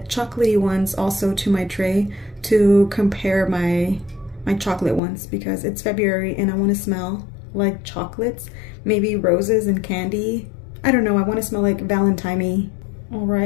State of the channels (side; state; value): right; drops out; at 5.0 s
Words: ones also to my tray to compare my chocolate ones, because it's February and I want to smell like chocolates, maybe roses and candy. I don't know, I want to smell like Valentine-y. All